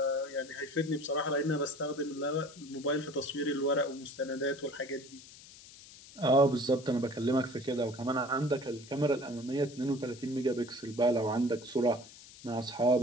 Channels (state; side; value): noise; left; hiss, 19 dB below the sound